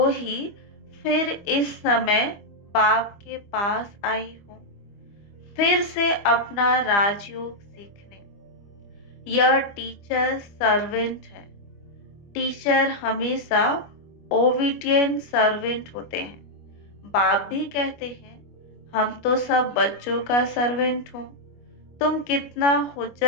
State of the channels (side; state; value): right; late; 25 ms